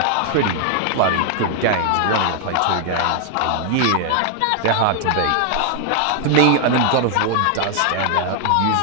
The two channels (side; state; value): both; different; correlation 0.00